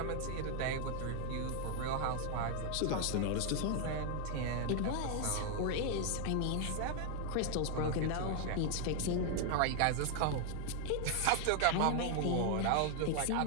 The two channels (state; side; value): different; both; correlation 0.00